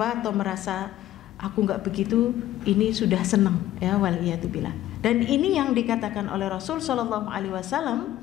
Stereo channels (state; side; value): quieter; right; 13.9 dB